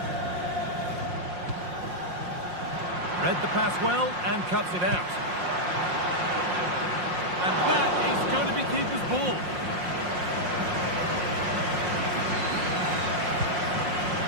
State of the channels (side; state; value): left; late; 5.6 ms